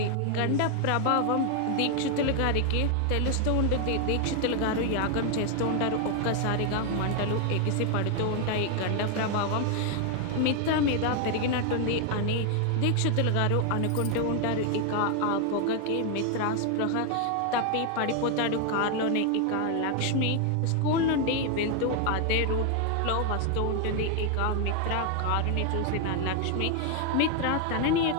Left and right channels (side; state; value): both; different; correlation 0.01